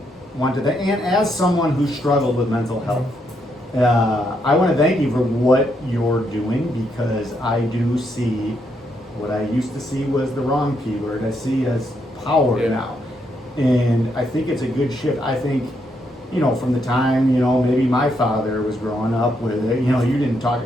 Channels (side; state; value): both; normal; correlation 0.77